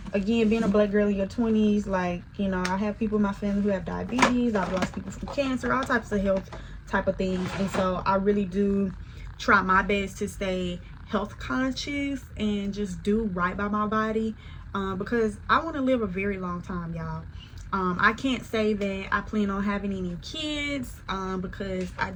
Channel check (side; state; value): both; identical; correlation 1.00